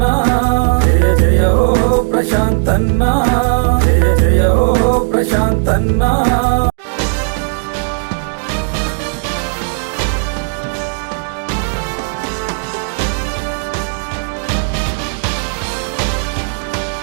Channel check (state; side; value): silent; left; digital silence